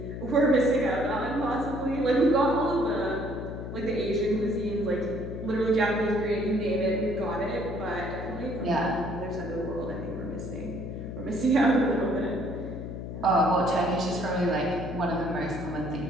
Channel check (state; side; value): noise; left; hum, 7 dB below the sound